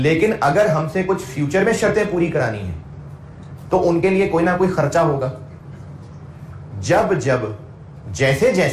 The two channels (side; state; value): both; identical; correlation 1.00